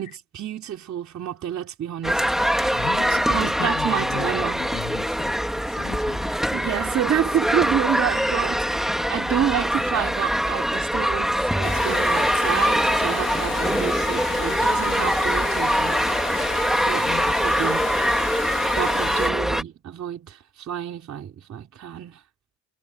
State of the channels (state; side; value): normal; both; correlation 0.79